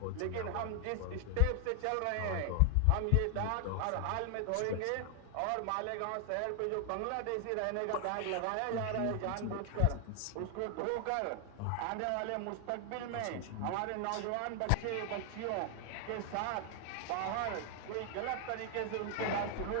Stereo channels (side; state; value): both; different; correlation 0.00